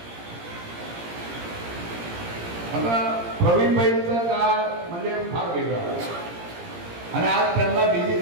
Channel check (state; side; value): late; left; 17 ms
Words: आता प्रवीणबाईंचा काळ म्हणजे फार वेगळा आणि आज त्यांना बिजी